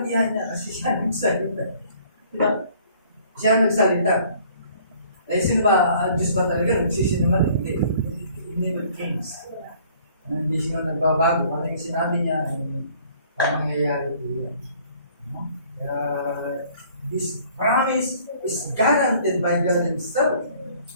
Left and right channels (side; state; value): both; inverted; correlation -0.56